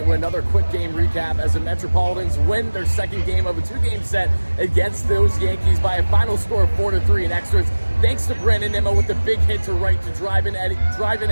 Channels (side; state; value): both; inverted; correlation -1.00